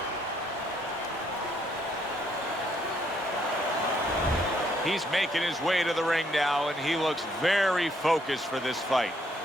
He's making his way to the ring now, and he looks very focused for this fight.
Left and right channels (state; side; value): normal; both; correlation 0.70